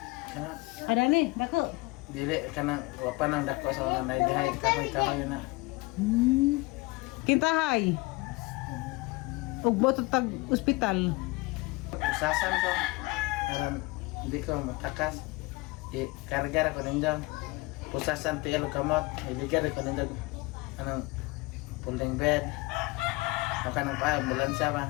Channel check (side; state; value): right; quieter; 23.7 dB